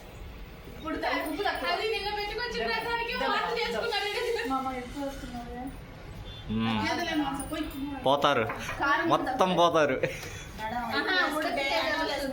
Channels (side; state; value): both; identical; correlation 1.00